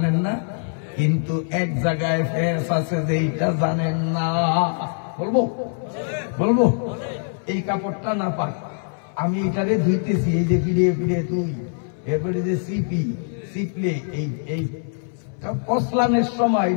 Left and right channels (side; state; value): right; silent; 62 dB below the other